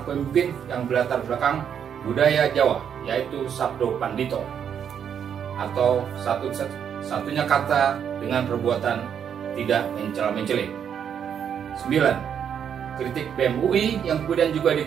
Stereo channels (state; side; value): quieter; left; 8.2 dB